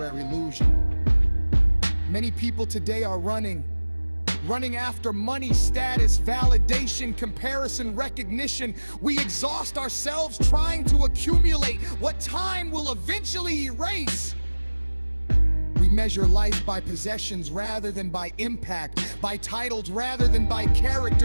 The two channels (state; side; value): inverted; both; correlation -1.00